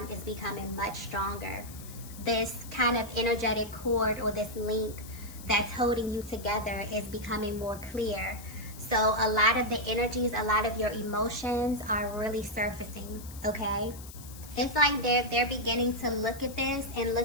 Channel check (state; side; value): noise; left; hiss, 16 dB below the sound